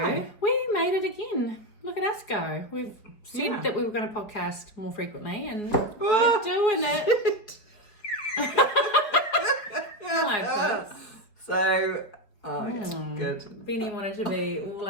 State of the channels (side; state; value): right; late; 5.0 ms